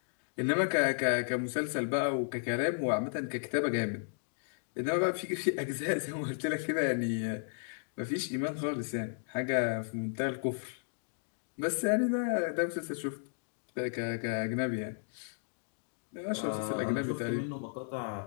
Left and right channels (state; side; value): silent; right; digital silence